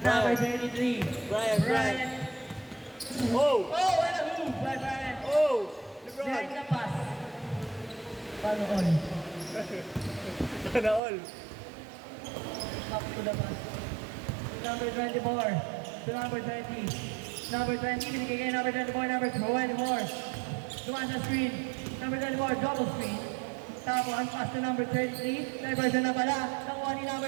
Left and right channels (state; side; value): drops out; left; at 11.0 s